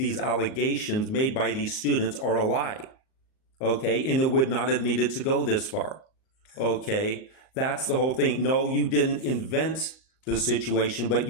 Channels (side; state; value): right; late; 38 ms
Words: allegations made by these students are a lie. Okay, and it would not have needed to go this far. Okay, that's the whole thing. No, you didn't invent the situation, but